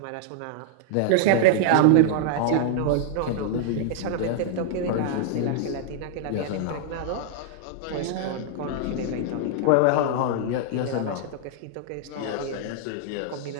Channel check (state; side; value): different; both; correlation -0.01